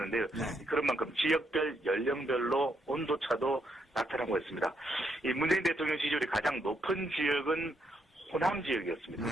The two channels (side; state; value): both; normal; correlation 0.76